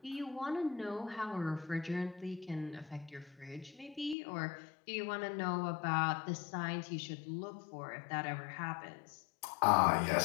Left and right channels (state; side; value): drops out; right; at 4.2 s